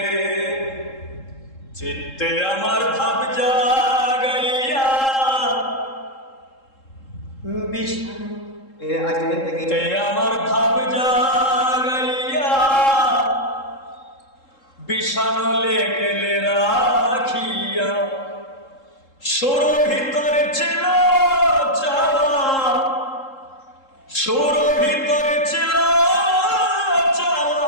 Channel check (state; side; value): late; right; 3.7 ms